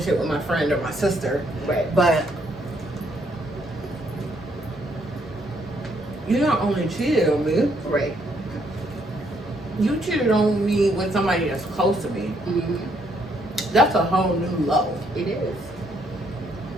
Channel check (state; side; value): normal; both; correlation 0.71